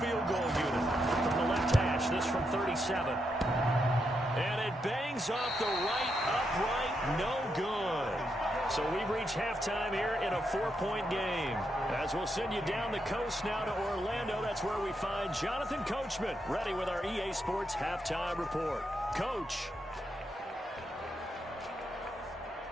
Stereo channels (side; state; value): both; normal; correlation 0.82